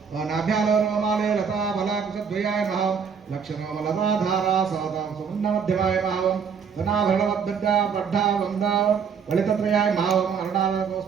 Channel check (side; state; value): left; quieter; 6.6 dB